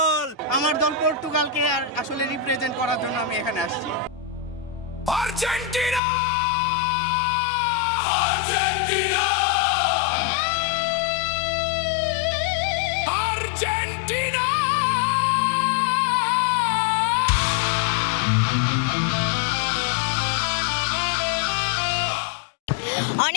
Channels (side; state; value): right; drops out; at 6.0 s